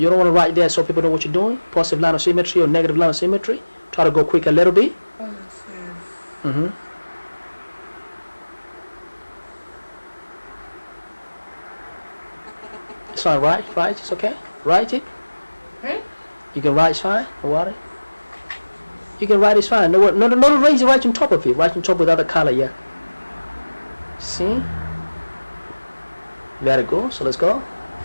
don't want to write there so people know what you're doing. Positive line of symmetry or negative line of symmetry. Try to go quick a little bit. positive It's fine. Right. It's okay. Write it. You can write. It's fine. No worry. You can write. It's fine. No, raise it right on top of it. Right on top with other color. Yeah. See. Very good. So let's go.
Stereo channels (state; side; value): inverted; both; correlation -1.00